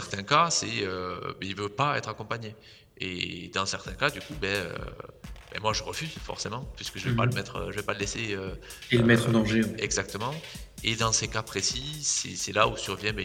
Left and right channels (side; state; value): both; identical; correlation 1.00